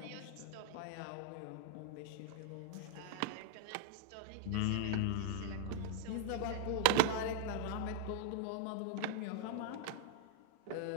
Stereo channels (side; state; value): both; different; correlation 0.00